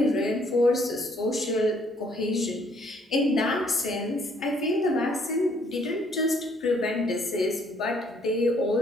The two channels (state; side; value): normal; both; correlation 0.65